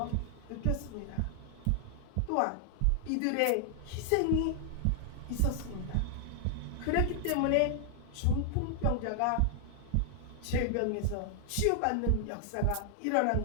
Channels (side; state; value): both; different; correlation 0.00